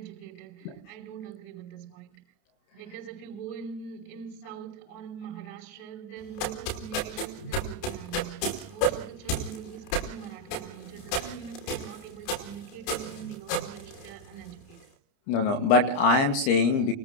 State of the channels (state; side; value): late; right; 30 ms